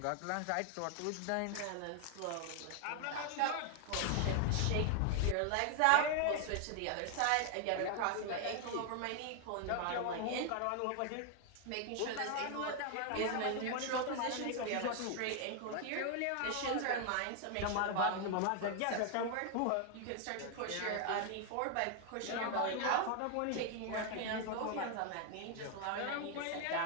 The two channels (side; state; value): both; different; correlation 0.00